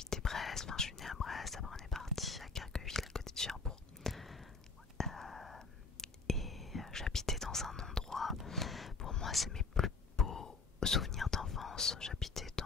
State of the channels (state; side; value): quieter; right; 4.4 dB